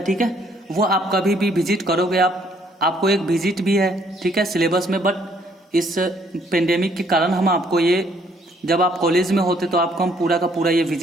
ठीक है। वो आप कभी भी विजिट करोगे आप आपको एक विजिट भी है, ठीक है, सिलेबस में, बट इस पेंडेमिक के कारण हम आपको ये, जब आप कॉलेज में होते तो आपको हम पूरा का पूरा ये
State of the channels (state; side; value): normal; both; correlation 0.65